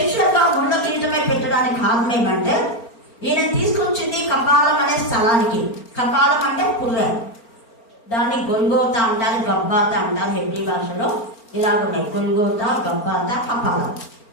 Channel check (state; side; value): late; right; 4.4 ms